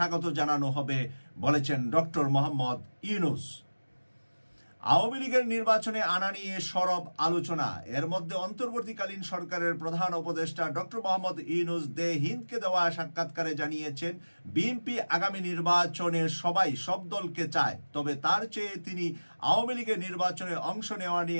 জানানো হবে বলেছেন ডক্টর মোহাম্মদ ইউনূস। আওয়ামী লীগের নির্বাচনে আনা নিয়ে সরব আলোচনা। এর মধ্যে অন্তর্বর্তীকালীন সরকারের প্রধান উপদেষ্টা ডক্টর মোহাম্মদ ইউনূস দে হিন্দকে দেওয়া সাক্ষাৎকারে জানিয়েছেন, বিএনপি আগামী নির্বাচনে সব দলকে চায়, তবে তার চেয়ে তিনি আওয়ামী লীগের নির্বাচনে অংশ নেওয়া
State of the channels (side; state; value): both; inverted; correlation -1.00